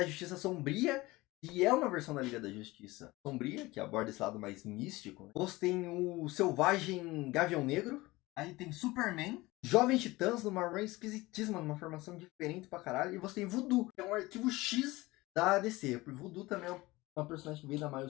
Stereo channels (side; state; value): right; quieter; 20.4 dB